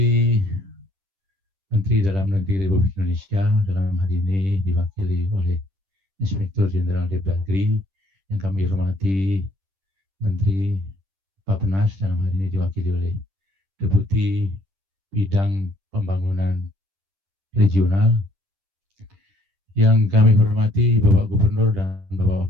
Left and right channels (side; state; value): left; late; 10 ms